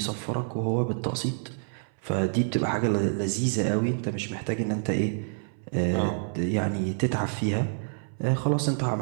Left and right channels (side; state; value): left; silent; 60 dB below the other